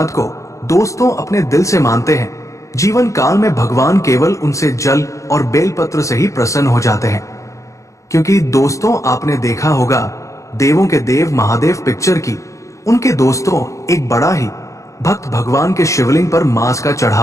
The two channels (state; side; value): late; right; 0.15 ms